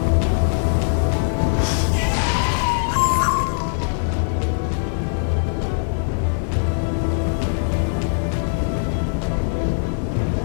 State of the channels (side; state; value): right; silent; digital silence